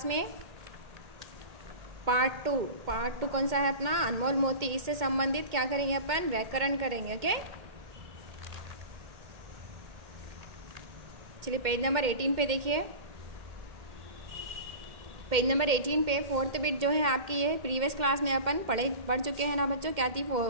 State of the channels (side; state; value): left; late; 2.1 ms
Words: में पार्ट टू कौन सा है अपना? अनमोल मोती. इससे संबंधित क्या करेंगे अपन? व्याकरण करेंगे. ओके, चलिए पेज नंबर 18 पे देखिए. पेज नंबर 18 पे फोर्थ बिट जो है आपकी, ये प्रीवियस क्लास में अपन पढ़ चुके हैं ना बच्चों. क्या थी